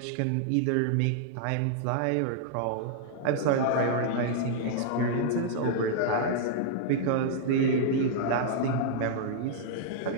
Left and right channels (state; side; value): different; both; correlation -0.01